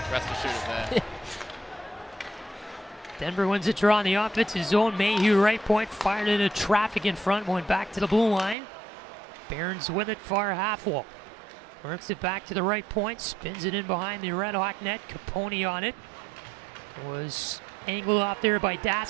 rest assured of that. Denver wins the draw in the offensive zone. Mayhew right point, fired into traffic in front, went back to the blue line. Barons with it, far half wall. Works it back to the right point, spins it in behind the RedHawk net. Capone on it. Was angled off there by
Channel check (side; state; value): left; drops out; at 8.6 s